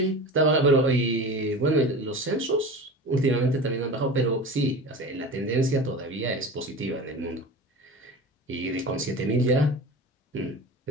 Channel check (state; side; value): normal; both; correlation 0.33